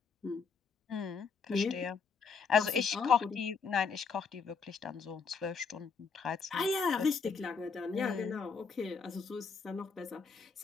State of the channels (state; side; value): quieter; right; 5.4 dB